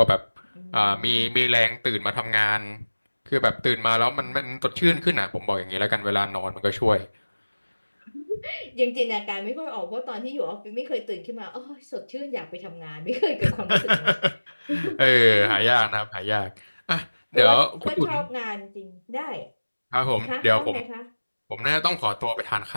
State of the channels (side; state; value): both; inverted; correlation -1.00